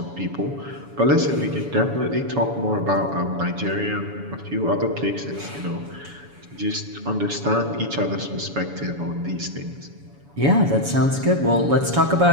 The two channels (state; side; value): late; left; 7.1 ms